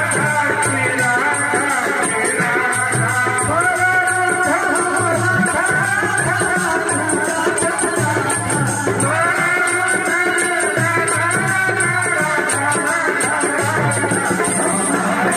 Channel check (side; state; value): both; identical; correlation 1.00